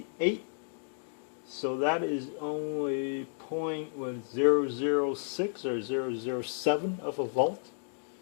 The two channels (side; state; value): right; silent; digital silence